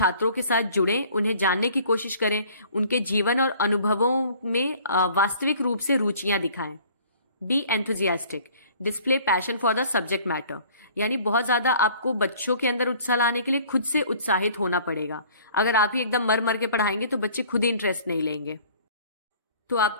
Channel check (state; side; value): inverted; both; correlation -0.52